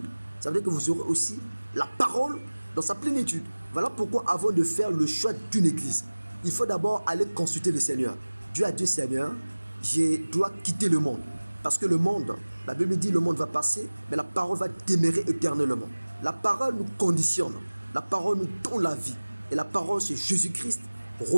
ça veut dire que vous aurez aussi la parole dans sa plénitude. Voilà pourquoi avant de faire le choix d'une église, il faut d'abord aller consulter le Seigneur. Dieu a dit, Seigneur, je dois quitter le monde. Parce que le monde, la Bible dit le monde va passer, mais la parole va demeurer éternellement. La parole nous conditionne, la parole nous donne la vie. Et la parole, c'est Jésus-Christ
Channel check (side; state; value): both; inverted; correlation -1.00